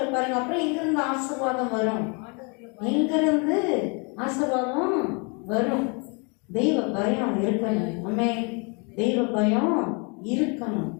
பாருங்க. அப்புறம் எங்கிருந்து ஆசீர்வாதம் வரும்? எங்கிருந்து ஆசீர்வாதம் வரும்? தெய்வ பயம் இருக்கணும். ஆமே, தெய்வ பயம் இருக்கணும்,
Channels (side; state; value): right; quieter; 33.6 dB